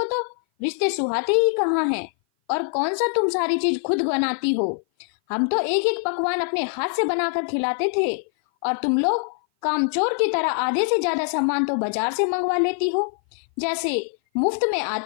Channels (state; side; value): silent; right; 57 dB below the other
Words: तो रिश्ते सुहाते ही कहाँ हैं। और कौन सा तुम सारी चीज खुद बनाती हो। हम तो एक एक पकवान अपने हाथ से बनाकर खिलाते थे, और तुम लोग कामचोर की तरह आधे से ज्यादा सामान तो बाजार से मंगवा लेती हो, जैसे मुफ्त में